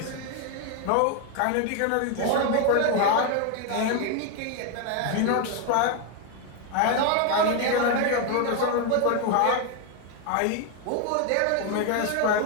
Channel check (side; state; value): both; different; correlation 0.01